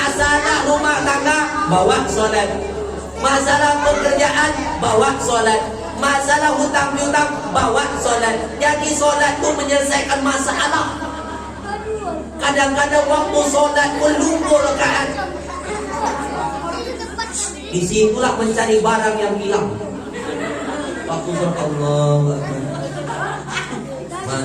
rumah tangga bawa solat. Masalah pekerjaan, bawa solat. Masalah hutang piutang, bawa solat. Jadi solat itu menyelesaikan masalah. Kadang-kadang waktu solat pun lupa rakaat. Disitulah mencari barang yang hilang. Waktu solat Allah,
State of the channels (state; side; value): identical; both; correlation 1.00